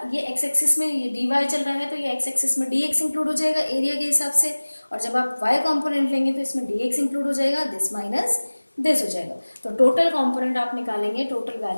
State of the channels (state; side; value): inverted; both; correlation -1.00